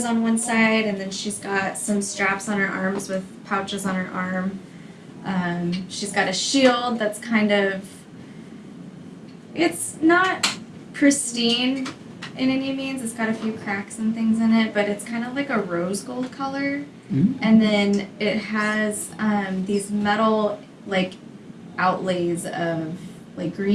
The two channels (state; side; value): identical; both; correlation 1.00